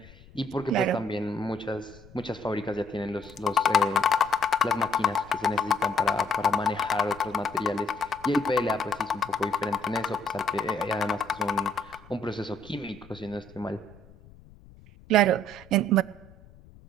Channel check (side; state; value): left; noise; rumble, 23 dB below the sound